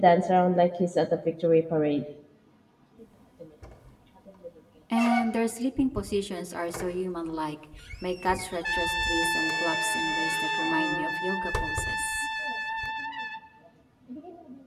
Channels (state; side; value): identical; both; correlation 1.00